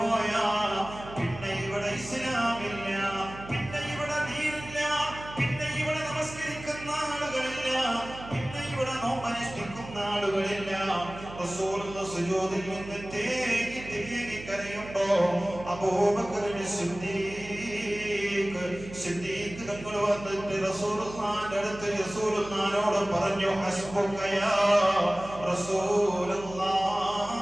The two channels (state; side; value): noise; right; hum, 14 dB below the sound